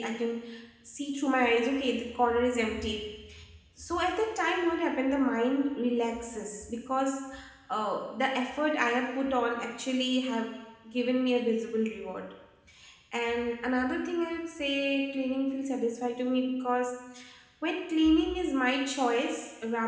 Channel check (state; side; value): identical; both; correlation 1.00